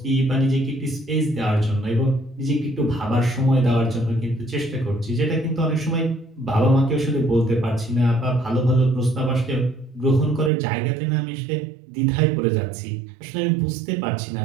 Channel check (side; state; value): left; drops out; at 10.5 s